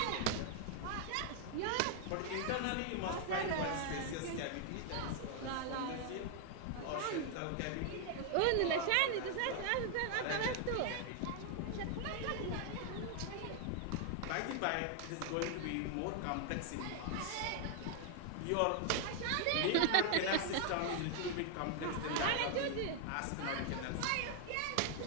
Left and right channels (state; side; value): different; both; correlation 0.00